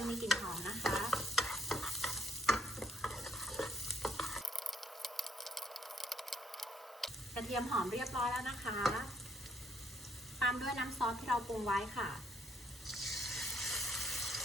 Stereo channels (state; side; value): normal; both; correlation 0.67